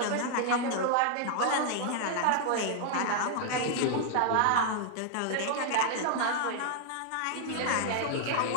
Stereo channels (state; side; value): different; both; correlation 0.00